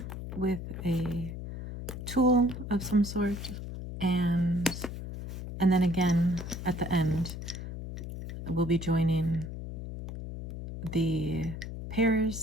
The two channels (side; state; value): left; noise; hum, 8 dB below the sound